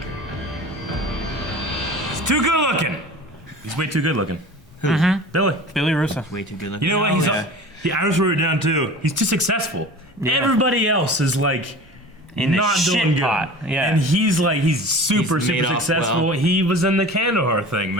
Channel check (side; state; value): both; normal; correlation 0.38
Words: He's too good looking. He's way too good looking. Mm-hmm. Billy. Russo. Way too good looking. You know what? I just wrote it down too. He's too successful. Yeah. Everybody else is like In the not shit doing good. pot. Yeah. And he's super He's made off successful. well. He was in the Kandahar thing,